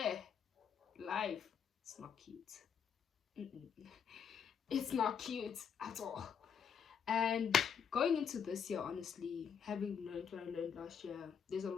life, it's not cute. It's not cute at all. And going into this year, honestly, having learned what I learned last year, there's a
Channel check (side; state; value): right; quieter; 7.2 dB